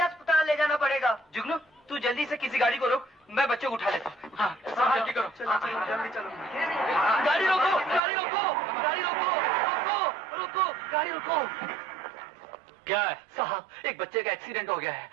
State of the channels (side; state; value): left; drops out; at 8.0 s